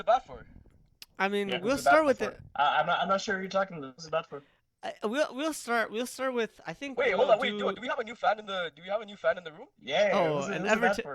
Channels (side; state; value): both; identical; correlation 1.00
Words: bat for? I mean, Yeah, who's we'll the bat start with for? it. I'm not sure who you're talking to. Who's the bat for? We'll start with. I think Wait, hold we'll on. Wait, do, do. do we have a new fan in the do we have a new fan in the room? Yeah, Oh, who's an the bat Everton.